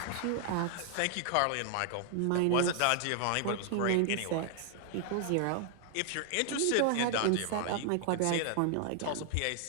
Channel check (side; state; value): both; different; correlation 0.00